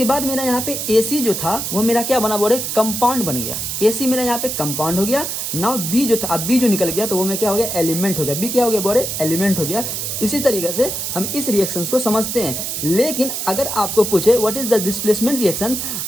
बाद मेरा यहाँ पे ए सी जो था वो मेरा क्या बना, बोले कंपाउंड बन गया। ए सी मेरा यहाँ पे कंपाउंड हो गया। नाउ बी जो था, अब बी जो निकल गया तो वो में क्या हो गया, एलिमेंट हो गया। बी क्या हो गया, बोले एलिमेंट हो गया। इसी तरीके से हम इस रिएक्शंस को समझते हैं। लेकिन अगर आपको पूछे what is the displacement reaction,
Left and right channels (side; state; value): right; noise; hiss, 3 dB below the sound